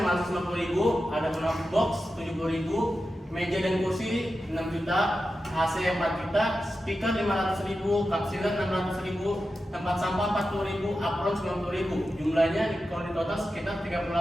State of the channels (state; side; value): normal; both; correlation 0.91